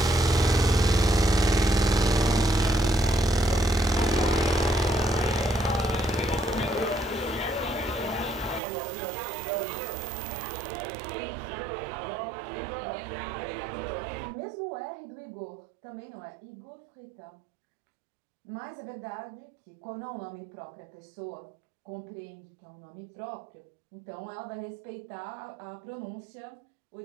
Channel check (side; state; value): left; drops out; at 8.6 s